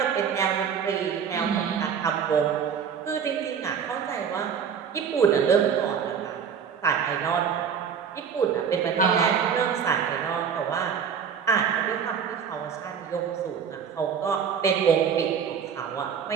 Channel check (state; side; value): quieter; left; 7.2 dB